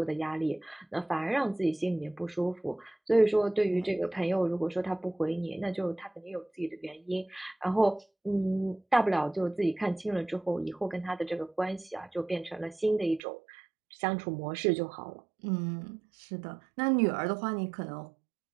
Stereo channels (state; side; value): drops out; left; at 13.2 s